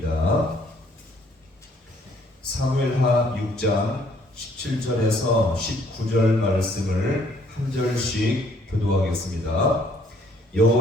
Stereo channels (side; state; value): both; normal; correlation 0.63